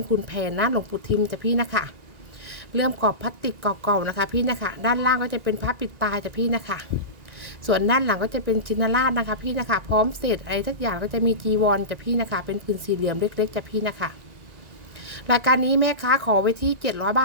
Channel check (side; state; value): left; late; 1.6 ms